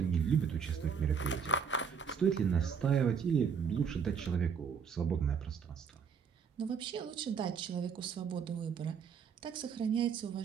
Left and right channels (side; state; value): left; quieter; 6.6 dB